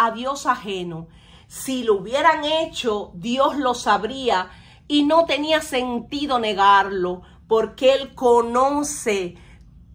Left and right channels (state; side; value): identical; both; correlation 1.00